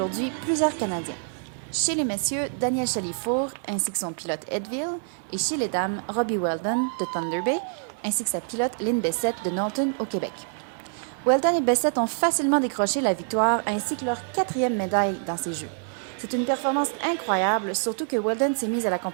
plusieurs Canadiens. Chez les messieurs, Daniel Chalifour ainsi que son pilote Edville, et chez les dames, Robbie Weldon de Thunder Bay ainsi que sa pilote Lynn Bessette de Norton au Québec. Weldon et Bessette ont facilement décroché la victoire ainsi que leur 4e médaille dans ces Jeux. C'est une performance incroyable, surtout que Weldon s'est mise à la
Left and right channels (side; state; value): left; silent; digital silence